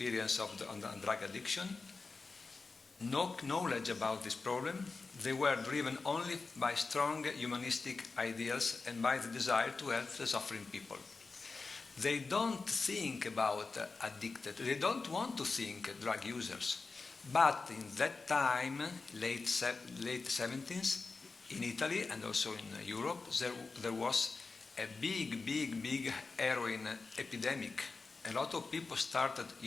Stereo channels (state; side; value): quieter; right; 4.1 dB